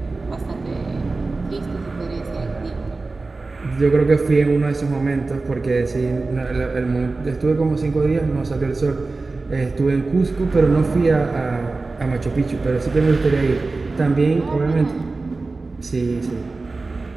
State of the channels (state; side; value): quieter; left; 3.6 dB